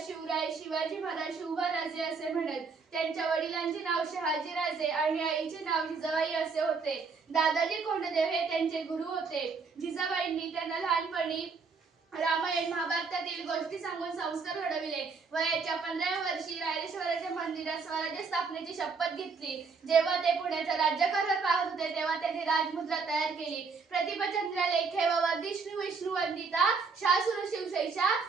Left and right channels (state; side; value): quieter; left; 4.9 dB